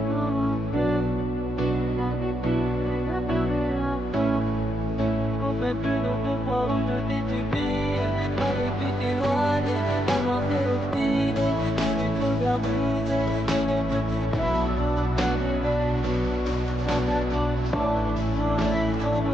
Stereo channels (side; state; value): both; normal; correlation 0.81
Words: Mais plus d'autres fois où je t'ai subi, j'aurais pu t'éloigner, avancer au fil, je suis tout bien brisé, et les petits cœurs sont annulés. Dans ta douce foi, j'aurais